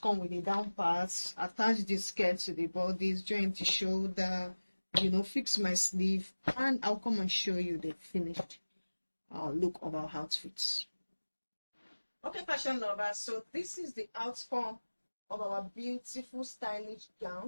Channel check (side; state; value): both; inverted; correlation -1.00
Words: with the down parts, attach the skirt to the bodies, join the shoulder, you know, fix my sleeve, and I'll come and show you the finished look of our outfits. Okay, fashion lovers, so this is the outcome of our beautiful stylish